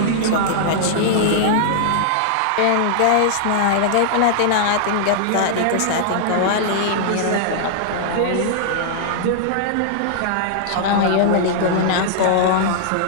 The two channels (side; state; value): both; different; correlation -0.01